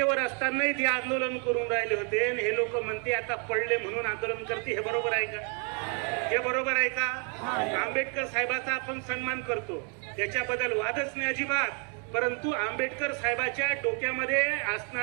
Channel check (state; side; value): quieter; left; 38.2 dB